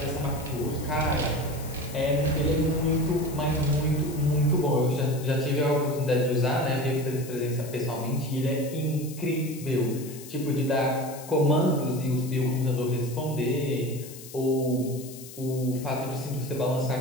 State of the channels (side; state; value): left; noise; hiss, 15 dB below the sound